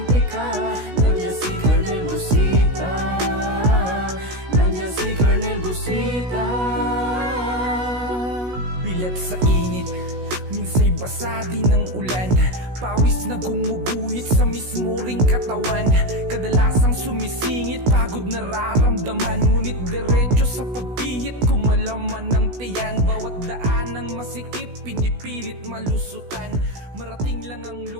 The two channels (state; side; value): late; left; 16 ms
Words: ka. Nandiyan si Colonel Busita, nandiyan si Colonel Busita. Bilat sa init, minsa'y basa din ng ulan. Pawis na gumuguhit sa mismo ring katawan. Kadalasang sumisingit, pagod nararamdaman. Ngunit diretso sa pagpihit, kumalaman ng tiyan. Bawat daan ng masikip, pinipilit malusutan. Marating lang ang